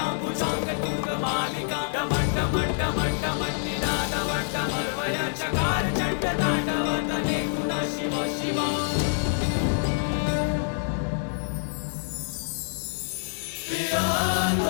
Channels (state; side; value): silent; right; digital silence